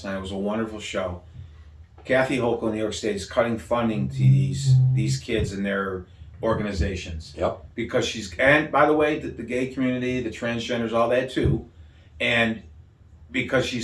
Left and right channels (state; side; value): identical; both; correlation 1.00